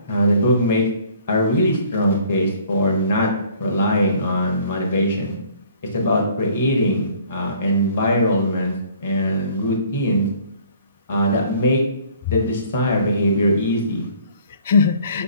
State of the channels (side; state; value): both; inverted; correlation -0.55